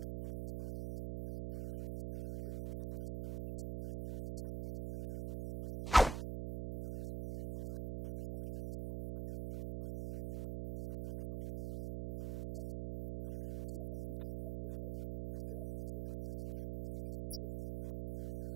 se priver de l'ACE fourni dans ce combo et qui possède plusieurs fonctions. Alors si tu as déjà entendu parler de l'AMS chez Bambu Lab, eh bien c'est tout simplement ce gestionnaire de filaments qui chez Anycubic s'appelle l'ACE. Alors l'ACE c'est quoi? Eh bien comme tu peux le voir, c'est un dévidoir avec un couvercle fermé qui va en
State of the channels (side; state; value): right; noise; hum, 9 dB below the sound